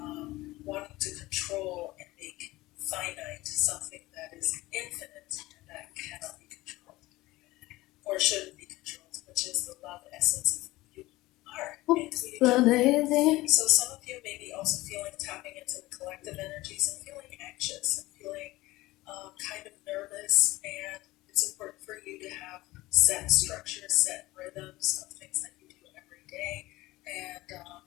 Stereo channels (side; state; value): right; quieter; 18.9 dB